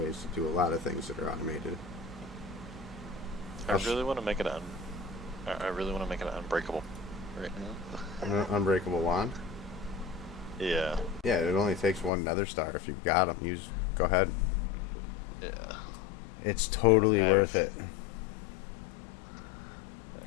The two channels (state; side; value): drops out; right; at 12.1 s